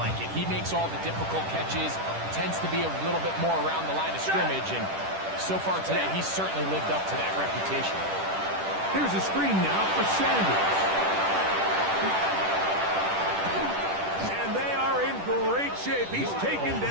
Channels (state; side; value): late; left; 10 ms